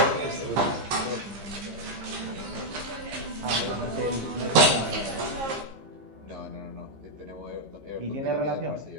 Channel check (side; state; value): left; late; 15 ms